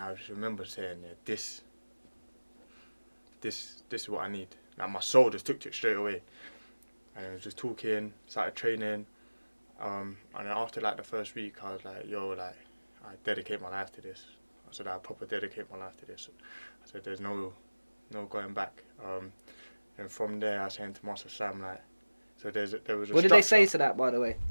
just remember saying, this is what I need. Like, my soul just took to it straight away. And I was just talking, started training. And then after like the first week, I was like, yo, like, I dedicate my life to this. said I proper dedicate my life to this. I said there's no going back. And from there, I was saying to Master Sam, like, so there was a What did they say to that, by the way?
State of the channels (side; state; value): both; inverted; correlation -1.00